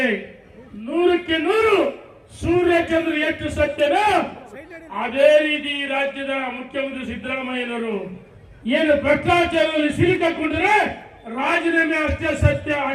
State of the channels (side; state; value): both; identical; correlation 1.00